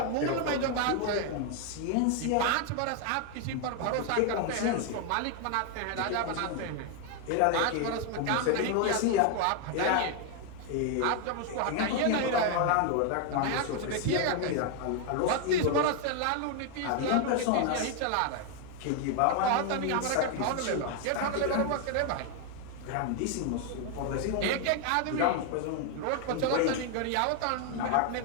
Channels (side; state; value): both; different; correlation 0.00